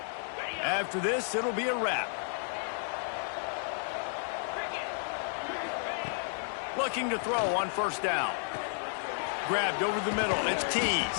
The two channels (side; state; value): right; silent; 56 dB below the other